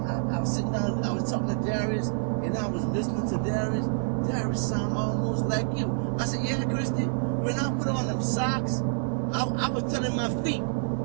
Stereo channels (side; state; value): left; silent; 60 dB below the other